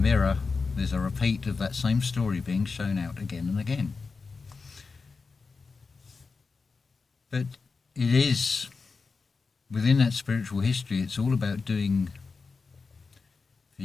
there's a repeat of that same story being shown out again and again. But it is, within that spiritual history, it's all about doing for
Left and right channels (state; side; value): quieter; right; 4.6 dB